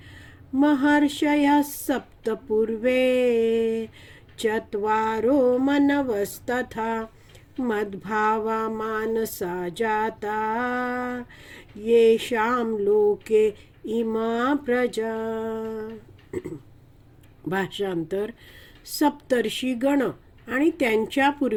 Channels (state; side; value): identical; both; correlation 1.00